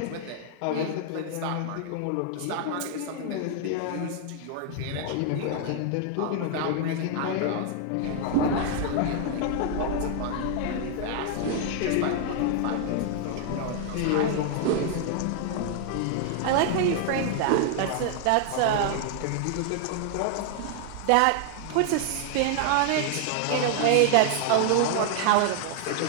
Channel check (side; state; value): both; different; correlation 0.00